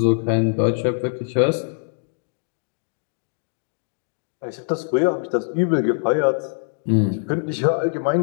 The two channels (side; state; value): right; silent; digital silence